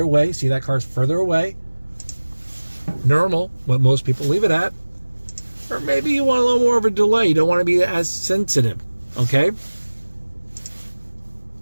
away. See, that car's further away. Normal, what most people leave it at. Or maybe you want a little more of a delay. You don't want to be as sensitive, okay?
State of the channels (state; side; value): inverted; both; correlation -1.00